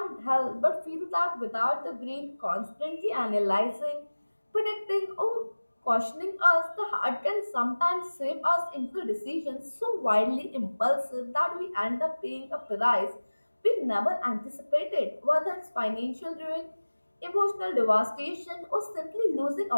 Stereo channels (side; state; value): both; inverted; correlation -1.00